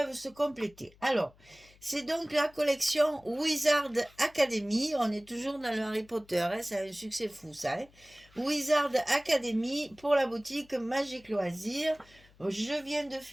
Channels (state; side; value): noise; left; hum, 28 dB below the sound